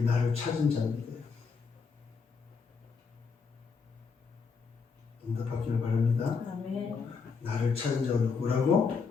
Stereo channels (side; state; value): right; quieter; 5.3 dB